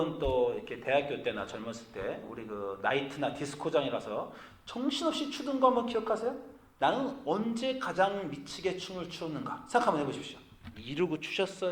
또 이렇게 대학교 때나 젊었을 때 우리 그 나이트나 디스코장에 가서 정신없이 추던 거 한번 기억하세요? 나는 언제 가장 미치게 춤을 추었는가 생각 한번 해보십시오. 이러고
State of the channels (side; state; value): both; identical; correlation 1.00